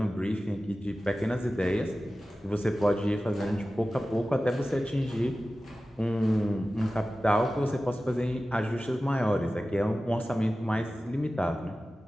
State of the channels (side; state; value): both; normal; correlation 0.95